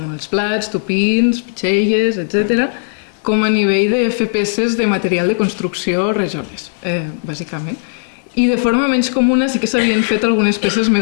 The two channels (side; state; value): right; silent; digital silence